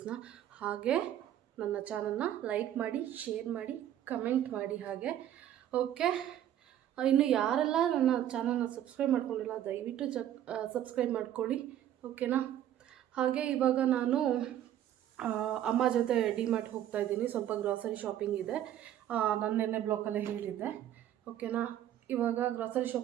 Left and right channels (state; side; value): quieter; left; 11.4 dB